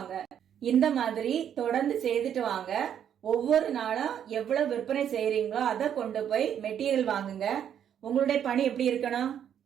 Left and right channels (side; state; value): left; quieter; 9.2 dB